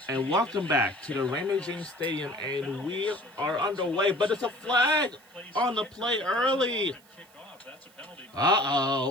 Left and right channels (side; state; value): right; noise; hiss, 28 dB below the sound